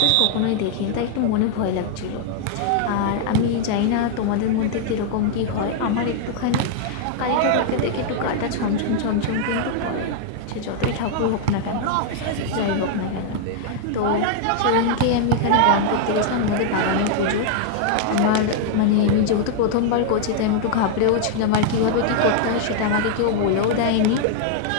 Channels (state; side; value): different; both; correlation 0.00